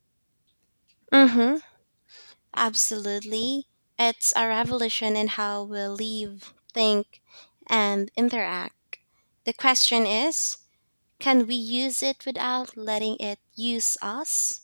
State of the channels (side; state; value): both; inverted; correlation -1.00